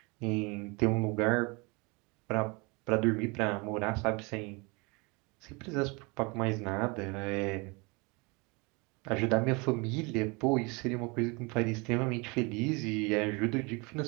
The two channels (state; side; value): quieter; left; 28.5 dB